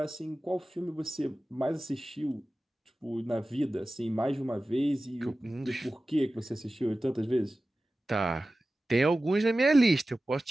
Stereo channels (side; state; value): both; normal; correlation 0.96